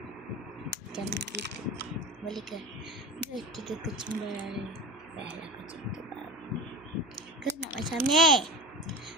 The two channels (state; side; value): noise; right; hum, 26 dB below the sound